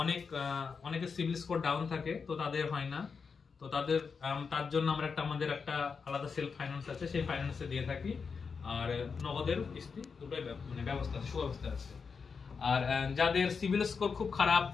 অনেকের সিভিল স্কোর ডাউন থাকে, তো তাদের হয় না, তো তার জন্য আমরা আমাদের একটা আলাদা সেলফ ফাইন্যান্স আছে, সেই ফাইন্যান্সে দিয়ে থাকি। আর নগদের কিস্তি দুটোই মানে ব্যবস্থা আছে, সুব্যবস্থা আছে। আর যাদের সিভিল স্কোর খুব খারাপ,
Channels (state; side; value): quieter; right; 5.5 dB